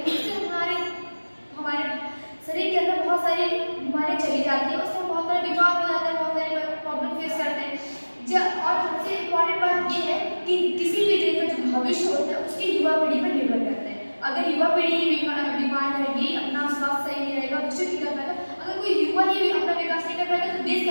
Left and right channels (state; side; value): inverted; both; correlation -1.00